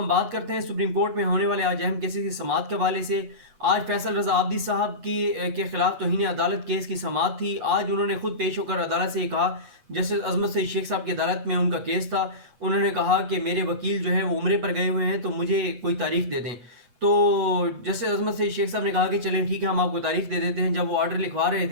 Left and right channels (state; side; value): late; left; 8.2 ms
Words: بات کرتے ہیں سپریم کورٹ میں ہونے والے آج اہم کیسز کی سماعت کے حوالے سے۔ آج فیصل رضا عابدی صاحب کے خلاف توہین عدالت کیس کی سماعت تھی۔ آج انہوں نے خود پیش ہو کر عدالت سے یہ کہا، جسٹس عظمت سعید شیخ صاحب کی عدالت میں ان کا کیس تھا، انہوں نے کہا کہ میرے وکیل جو ہیں وہ عمرے پر گئے ہوئے ہیں تو مجھے کوئی تاریخ دے دیں۔ تو جسٹس عظمت سعید شیخ صاحب نے کہا کہ چلیں ٹھیک ہے، ہم آپ کو تاریخ دے دیتے ہیں۔ جب وہ آرڈر لکھوا رہے